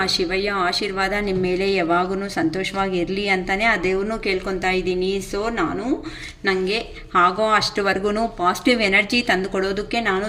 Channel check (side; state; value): both; identical; correlation 1.00